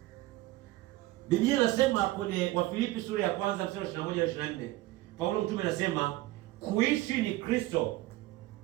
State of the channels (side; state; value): left; quieter; 17.9 dB